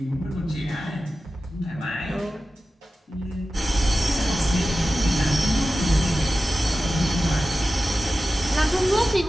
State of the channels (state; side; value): normal; both; correlation 0.94